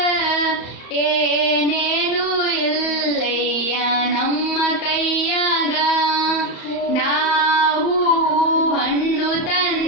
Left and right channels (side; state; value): right; late; 34 ms